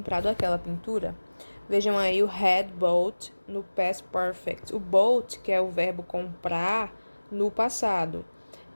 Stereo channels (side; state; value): both; inverted; correlation -1.00